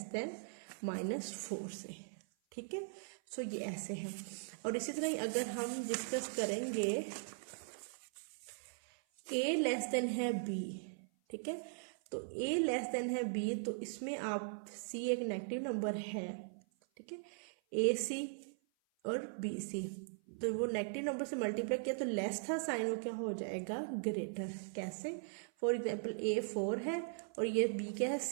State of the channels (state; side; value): silent; left; 51 dB below the other